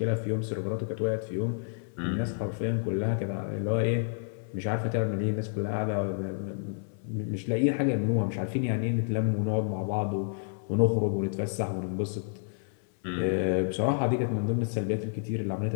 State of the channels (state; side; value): silent; right; 58 dB below the other